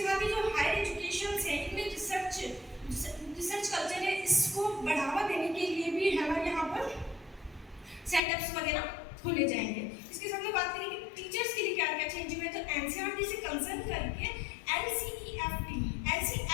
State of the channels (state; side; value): drops out; right; at 8.2 s